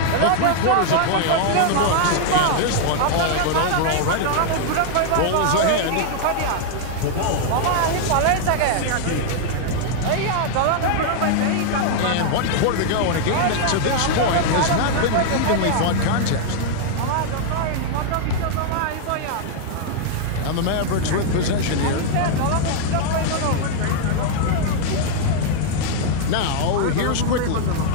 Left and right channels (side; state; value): both; different; correlation 0.00